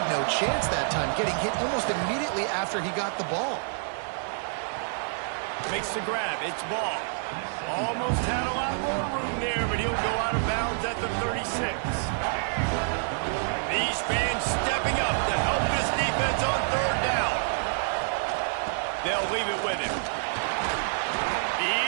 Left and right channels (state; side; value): silent; left; digital silence